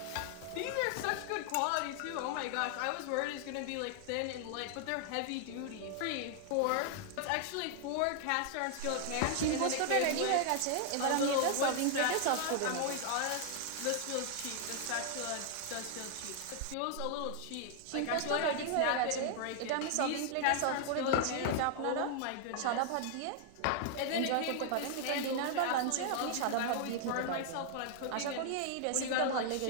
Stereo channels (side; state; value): both; different; correlation 0.00